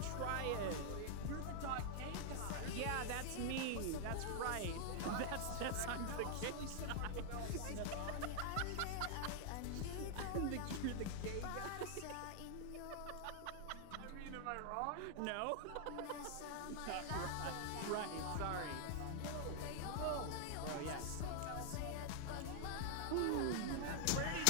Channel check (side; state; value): both; different; correlation 0.00